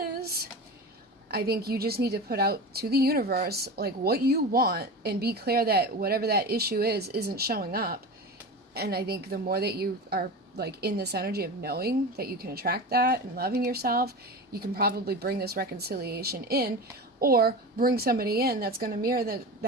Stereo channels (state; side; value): normal; both; correlation 0.28